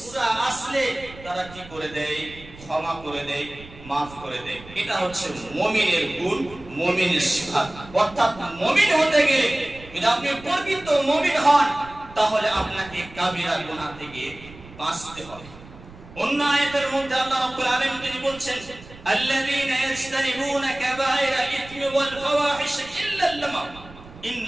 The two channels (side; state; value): right; noise; rumble, 19 dB below the sound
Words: আসলে তারা কি করে দেয়? ক্ষমা করে দেয়, maaf করে দেয়। এটা হচ্ছে মুমিনের গুণ, মুমিনের সিফাত। অর্থাৎ মুমিন হতে গেলে, যদি আপনি প্রকৃত মুমিন হন, তাহলে আপনাকে কাবিরা গুনাহ থেকে বাঁচতে হবে। অন্য আয়াতের মধ্যে আল্লাহ রাব্বুল আলামিন তিনি বলছেন, আল্লাযীনা ইয়াজতানিবুনা কাবায়রা ইথমি ওয়াল ফাওয়াহিশ ইল্লা আল-লাম